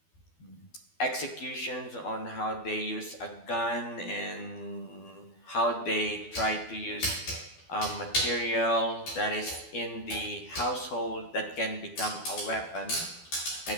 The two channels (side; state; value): right; late; 12 ms